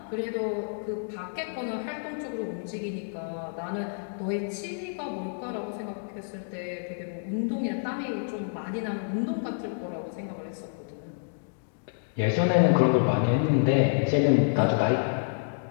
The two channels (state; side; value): silent; right; digital silence